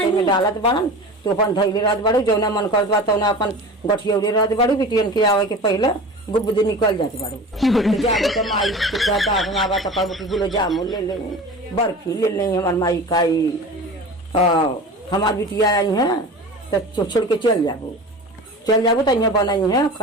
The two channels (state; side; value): normal; both; correlation 0.34